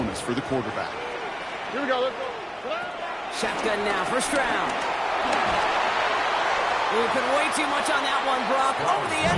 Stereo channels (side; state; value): both; identical; correlation 1.00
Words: for the quarterback. Here we go. Let's go. Shotgun now, first round. Ooh, put way too much on that one, Brock. Over the